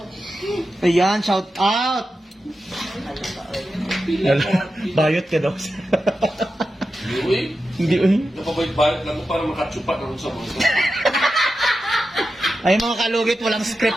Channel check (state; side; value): normal; both; correlation 0.90